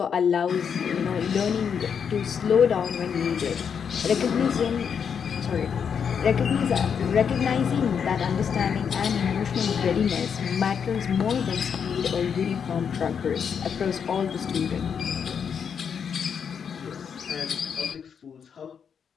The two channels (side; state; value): right; quieter; 7.1 dB